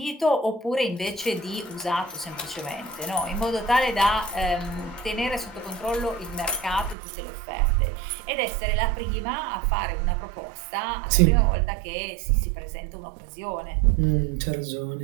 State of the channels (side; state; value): left; drops out; at 7.0 s